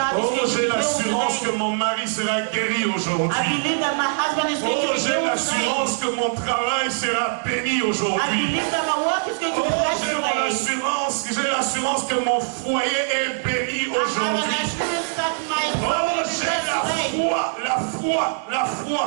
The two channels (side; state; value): left; silent; 60 dB below the other